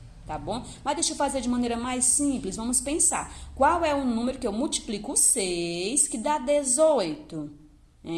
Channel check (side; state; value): both; identical; correlation 1.00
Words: Tá bom? Mas deixa eu fazer de maneira mais simples. Vamos pensar. Qual é o número que eu multiplico 6 que dá 18?